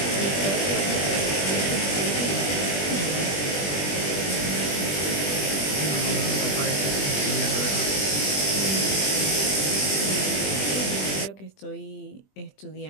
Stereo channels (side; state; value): right; late; 20 ms